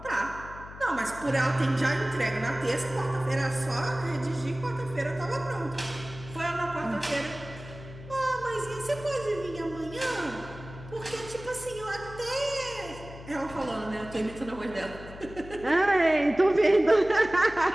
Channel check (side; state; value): left; noise; hum, 15 dB below the sound